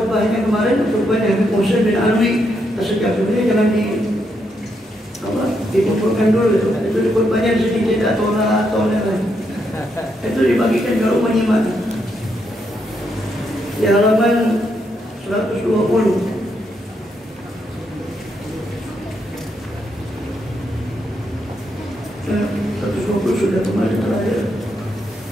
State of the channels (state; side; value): normal; both; correlation 0.79